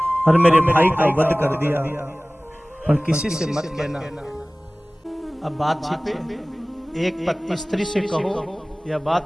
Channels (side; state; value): both; normal; correlation 0.98